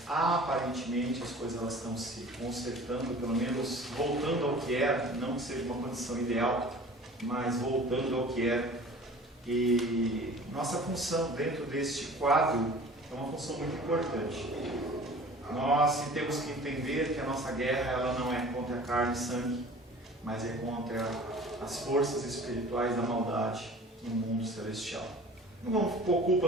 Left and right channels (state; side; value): normal; both; correlation 0.44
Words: aparentemente as coisas elas estão se consertando, pelo menos voltando ao que era, não que seja uma condição ideal, mas voltando ao que era. E nossa função dentro deste quadro é uma função muito importante. Nós temos que entender que a nossa guerra ela não é contra a carne e sangue, mas é contra as forças espirituais da maldade no mundo celestial. Não vamos pôr